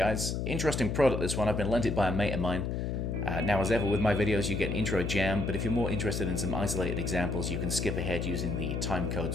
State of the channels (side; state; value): left; noise; hum, 1 dB below the sound